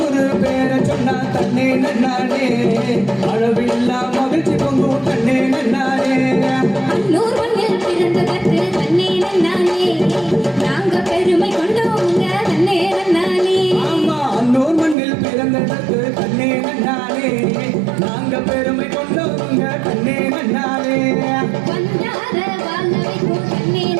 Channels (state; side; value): drops out; left; at 15.0 s